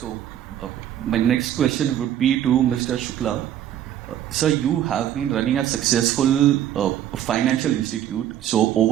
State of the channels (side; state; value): left; quieter; 11.0 dB